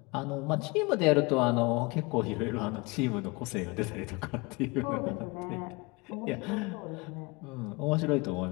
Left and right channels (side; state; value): right; quieter; 26.4 dB